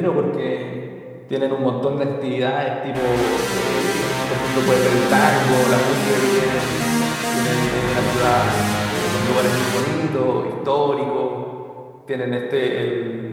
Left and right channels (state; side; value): identical; both; correlation 1.00